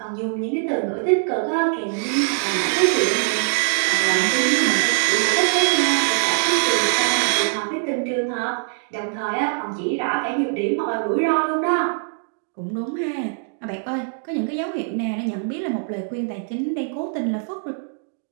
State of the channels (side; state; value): left; silent; digital silence